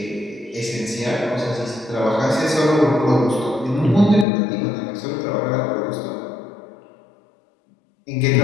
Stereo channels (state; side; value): drops out; right; at 4.2 s